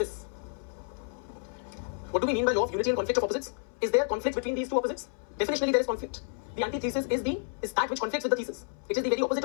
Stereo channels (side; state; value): right; silent; 58 dB below the other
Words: What do we mean by law of unity and conflict of opposites? Is there conflict between these two opposites? Definitionally, there is conflict. The antithesis is that which conflicts with the thesis. It is the very opposite